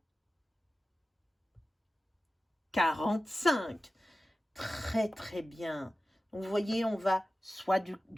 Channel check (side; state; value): both; normal; correlation 0.95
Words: 45. Très, très bien. Donc, vous voyez, on va soit